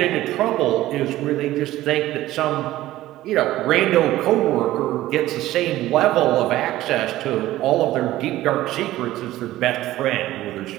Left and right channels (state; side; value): quieter; left; 15.5 dB